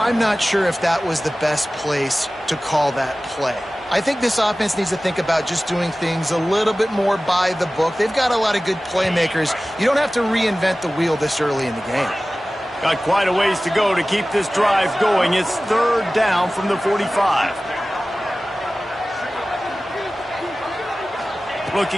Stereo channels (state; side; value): normal; both; correlation 0.97